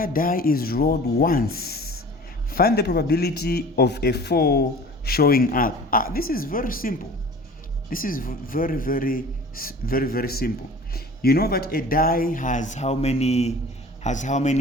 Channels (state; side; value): normal; both; correlation 0.43